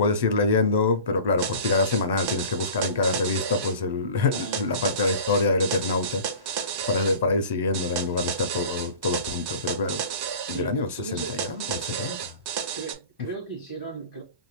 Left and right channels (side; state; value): left; late; 1.1 ms